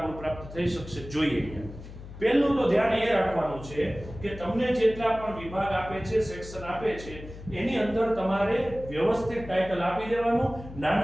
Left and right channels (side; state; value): left; noise; hum, 14 dB below the sound